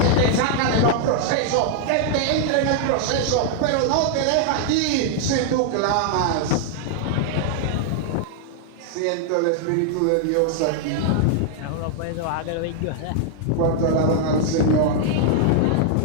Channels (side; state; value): both; different; correlation 0.00